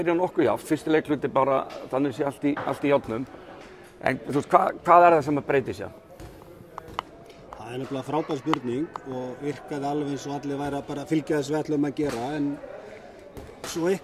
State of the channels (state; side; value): identical; both; correlation 1.00